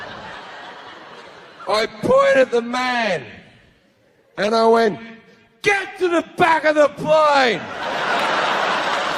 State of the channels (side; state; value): both; identical; correlation 1.00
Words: I point at the man. And I went, get to the back of the plane.